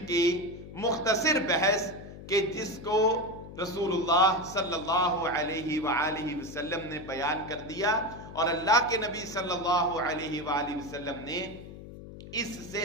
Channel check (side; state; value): left; noise; hum, 14 dB below the sound